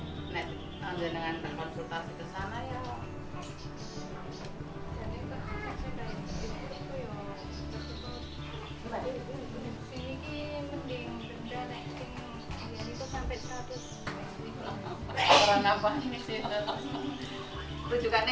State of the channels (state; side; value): identical; both; correlation 1.00